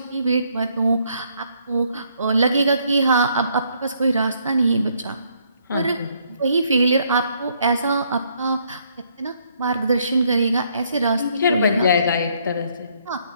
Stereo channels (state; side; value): inverted; both; correlation -0.69